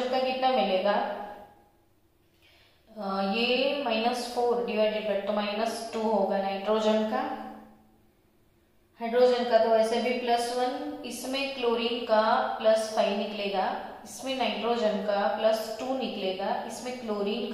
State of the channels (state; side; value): identical; both; correlation 1.00